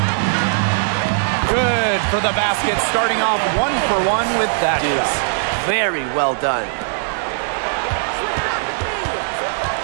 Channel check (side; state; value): left; silent; 67 dB below the other